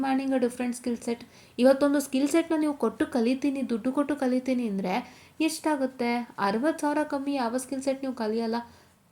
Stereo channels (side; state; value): both; identical; correlation 1.00